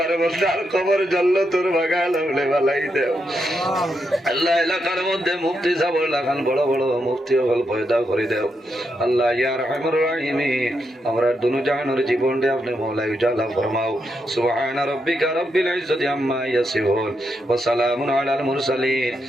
বন্ধার খবর জানল তোর বাগান হলে বালাই দেও আল্লাহ এলাকার মধ্যে মুফতি সাহেব লাগান বড় বড় মুফতি হল পয়দা করে দেও আল্লাহ ইয়া রাহমানুর রাহিমিন আমরা দুনু জাহানের জীবনটা আপনি মওলাই উজালা ফরমাও সুবহান রাব্বিকা রাব্বিল ইজ্জাতি আম্মা ইয়াসিফুন ওয়া সালামুন আলাল মুরসালিন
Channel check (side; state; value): both; normal; correlation 0.82